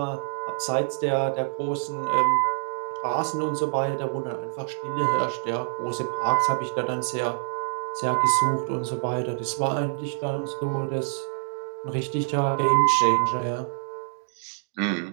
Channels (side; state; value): left; silent; digital silence